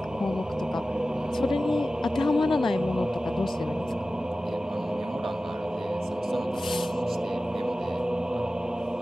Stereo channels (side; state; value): both; normal; correlation 0.95